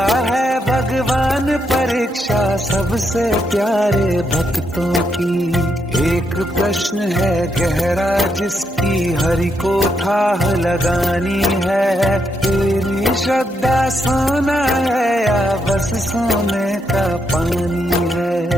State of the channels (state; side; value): normal; both; correlation 0.79